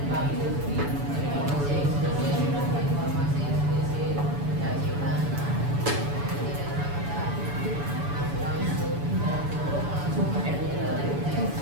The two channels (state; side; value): late; left; 7.0 ms